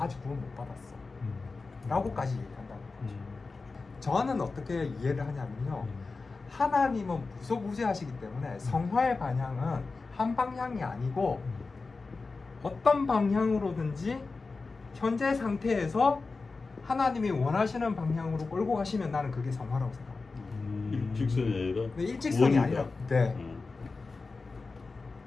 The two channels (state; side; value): quieter; right; 4.0 dB